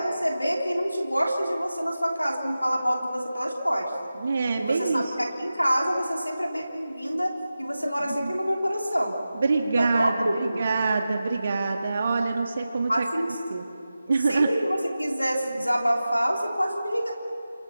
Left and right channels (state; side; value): inverted; both; correlation -0.94